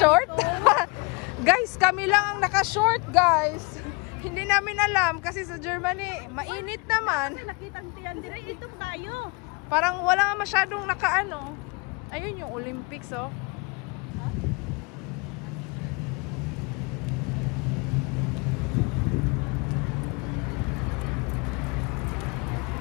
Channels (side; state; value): right; quieter; 29.3 dB